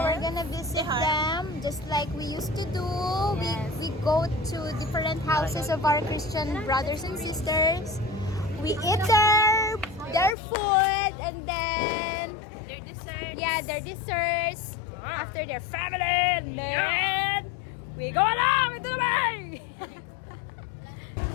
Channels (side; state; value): right; drops out; at 10.4 s